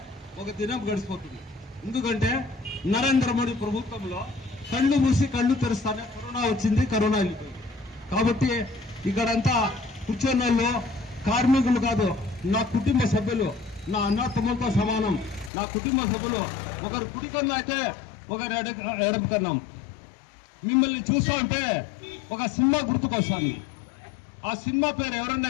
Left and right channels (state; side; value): drops out; right; at 15.5 s